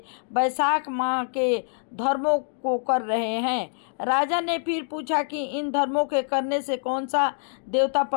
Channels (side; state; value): right; silent; digital silence